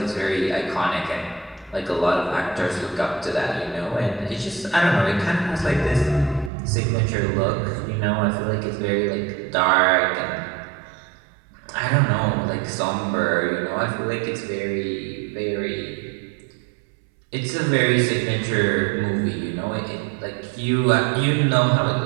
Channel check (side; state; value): left; drops out; at 6.5 s